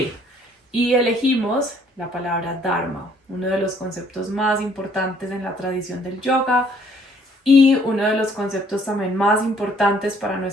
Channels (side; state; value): both; normal; correlation 0.62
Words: Y elegimos la palabra Dharma, uno de los conceptos más importantes en la tradición del yoga y uno de los conceptos también más importantes para